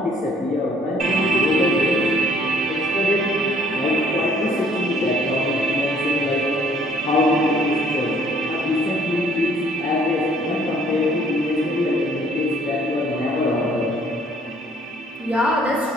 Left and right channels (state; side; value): normal; both; correlation 0.60